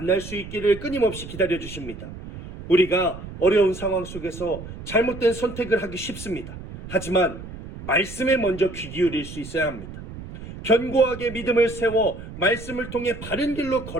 수 있기를 끊임없이 기다려주십니다. 우리가 어려운 상황 속에서 잘못된 선택을 하기 쉽습니다. 하지만 말씀에 먼저 귀 기울일 수 있어야 합니다. 견고하게 믿음을 세워 말씀을 통해 바른 길로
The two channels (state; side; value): noise; right; rumble, 12 dB below the sound